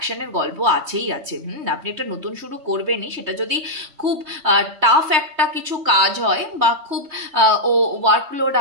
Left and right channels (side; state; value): left; late; 3.2 ms